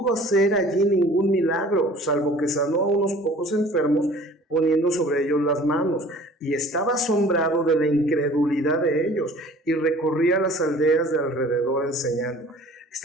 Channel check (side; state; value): both; normal; correlation 0.48